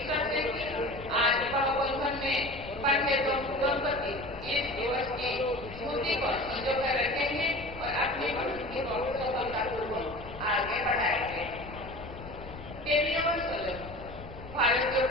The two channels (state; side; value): noise; left; rumble, 14 dB below the sound